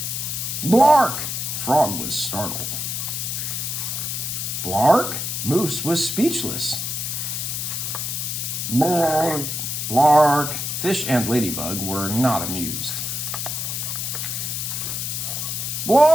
"Blark!" Frog was startled. "Blark?" Moose was speechless. "Blark, blark." Fish and Ladybug were not amused.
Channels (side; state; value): left; noise; hiss, 3 dB below the sound